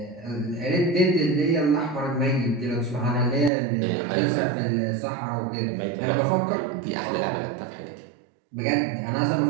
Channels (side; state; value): left; drops out; at 3.5 s